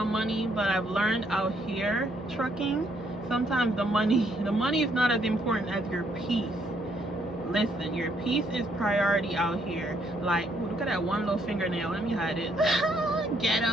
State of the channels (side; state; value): both; normal; correlation 0.71